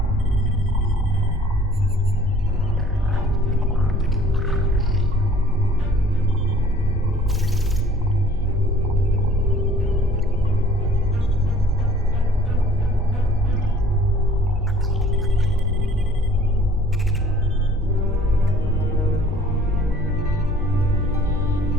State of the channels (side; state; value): both; normal; correlation 0.54